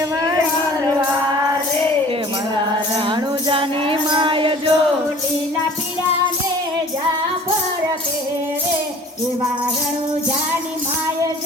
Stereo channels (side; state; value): both; normal; correlation 0.47